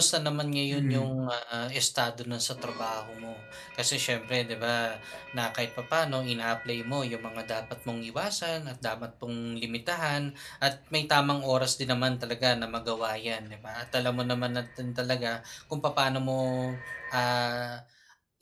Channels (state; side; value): identical; both; correlation 1.00